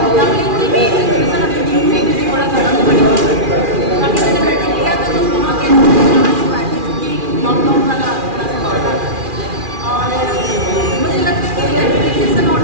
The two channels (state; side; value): late; left; 2.4 ms